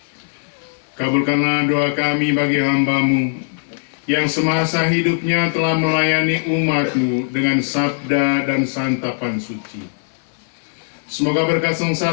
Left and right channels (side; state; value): right; silent; digital silence